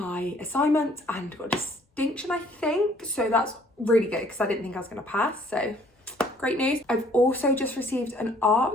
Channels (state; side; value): normal; both; correlation 0.60